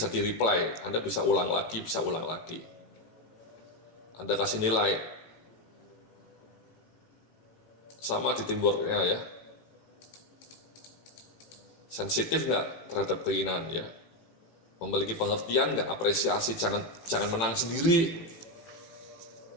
di-reply. Anda bisa ulang lagi, bisa ulang lagi. Anda kasih nilai. Sama di teamwork-nya ya. Sensitif nggak terhadap keinginan ya. Memiliki pengertian nggak, apresiasi, jangan menang sendiri.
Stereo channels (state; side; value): late; right; 17 ms